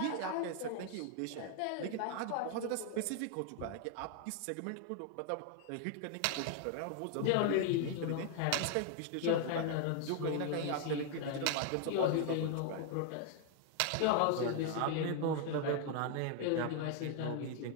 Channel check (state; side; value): different; both; correlation 0.00